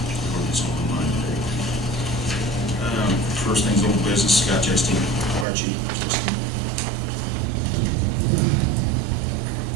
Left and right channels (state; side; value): drops out; left; at 5.5 s